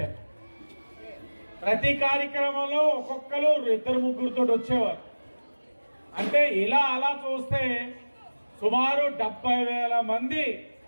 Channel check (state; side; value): inverted; both; correlation -1.00